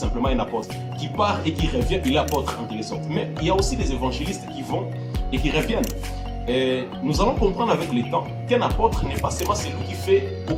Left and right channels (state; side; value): identical; both; correlation 1.00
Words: un apôtre qui part et qui revient, il est apôtre en quelque sorte. Mais il y a aussi des évangélistes qui vont et qui reviennent. Et nous allons comprendre avec le temps qu'un apôtre n'est pas seulement celui qui fait